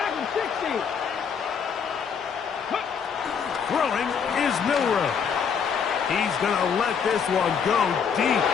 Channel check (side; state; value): right; quieter; 6.8 dB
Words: 60. Throwing is Milroe. He's going to let this one go deep.